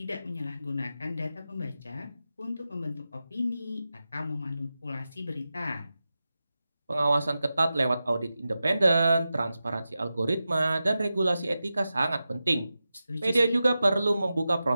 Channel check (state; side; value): inverted; both; correlation -0.92